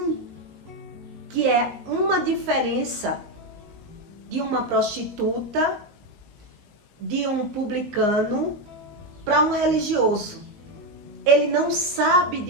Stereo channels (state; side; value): late; left; 19 ms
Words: que é uma diferença de uma prostituta, de um publicano, para um religioso. Ele não sabe